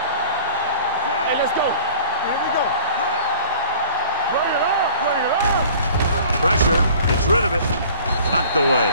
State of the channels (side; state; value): both; inverted; correlation -0.47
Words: Hey, let's go. Here we go. Bring it up. Bring it up. Pressure. Gets rid of it. Knocked away.